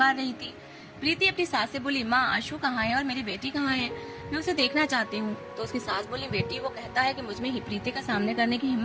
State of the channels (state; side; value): identical; both; correlation 1.00